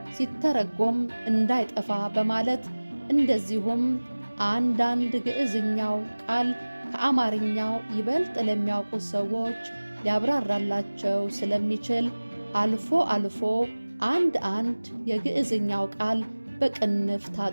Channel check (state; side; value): inverted; both; correlation -1.00